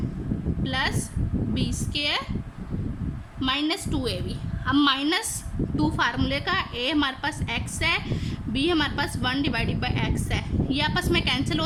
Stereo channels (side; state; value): both; identical; correlation 1.00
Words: plus b square minus 2ab। अब माइनस 2 फार्मूले का, ए हमारे पास x है, बी हमारे पास 1 डिवाइडेड बाय x है, ये आपस में कैंसिल हो